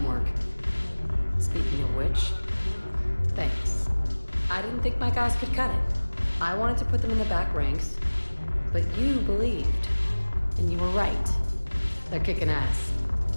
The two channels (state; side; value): inverted; both; correlation -1.00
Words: Speaking of which, thanks. I didn't think my guys could cut it. I wanted to put them in the back ranks, but you believed. And you were right. They're kicking ass.